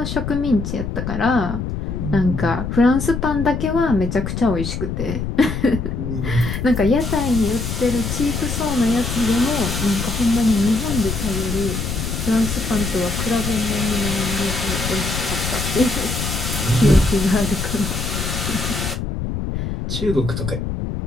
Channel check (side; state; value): left; noise; rumble, 4 dB below the sound